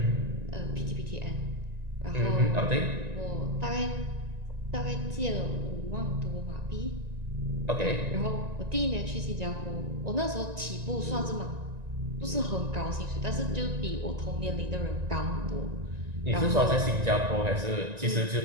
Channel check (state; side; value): late; left; 1.9 ms